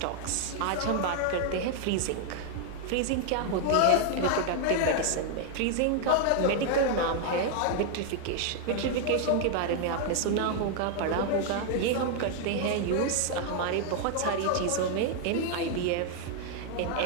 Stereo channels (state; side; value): different; both; correlation 0.00